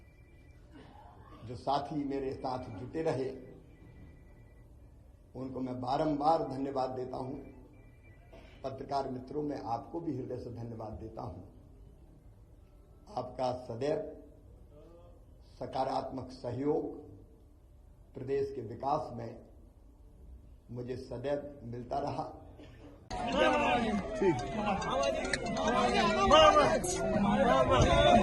जो साथी मेरे साथ जुटे रहे, उनको मैं बारंबार धन्यवाद देता हूं। पत्रकार मित्रों, मैं आपको भी हृदय से धन्यवाद देता हूं। आपका सदैव सकारात्मक सहयोग प्रदेश के विकास में मुझे सदैव मिलता रहा।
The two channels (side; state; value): both; identical; correlation 1.00